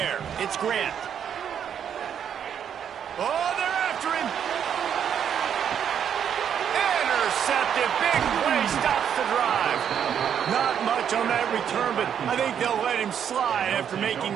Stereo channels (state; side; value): quieter; left; 8.5 dB